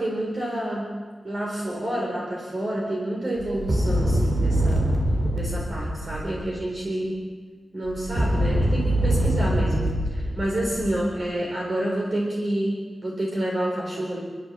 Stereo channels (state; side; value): normal; both; correlation 0.90